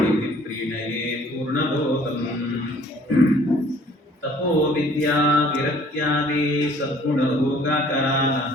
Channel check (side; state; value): both; normal; correlation 0.56